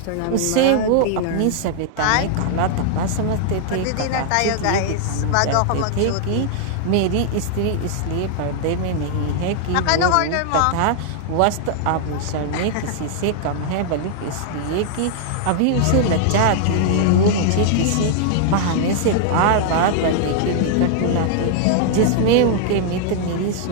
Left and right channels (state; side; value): different; both; correlation 0.00